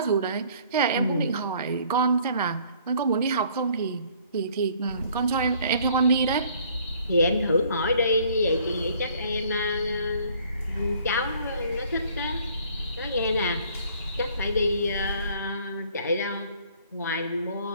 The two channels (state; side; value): inverted; both; correlation -0.58